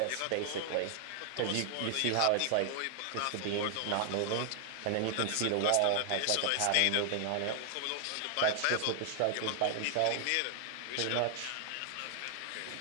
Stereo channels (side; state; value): both; different; correlation 0.00